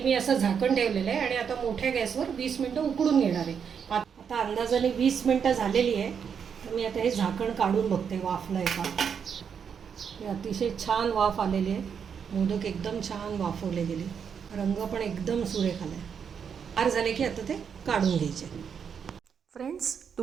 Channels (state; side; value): quieter; left; 7.1 dB